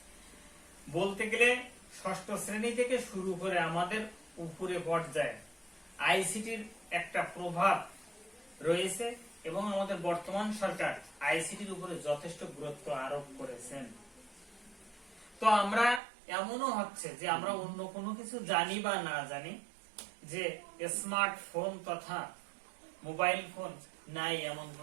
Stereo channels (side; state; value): left; drops out; at 16.0 s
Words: বলতে গেলে ষষ্ঠ শ্রেণী থেকে শুরু করে আমাদের উপরে পর্যায়ে আইসিটির একটা প্রভাব রয়েছে এবং আমাদের বর্তমান সরকার আইসিটির উপরে যথেষ্ট গুরুত্ব আরোপ করেছেন। তো আমরা এমনও হচ্ছে যে আমরা অন্য কোনো কিছু জানি বা না জানি, যে স্মার্টফোন তথা মোবাইল ফোন নাই এমন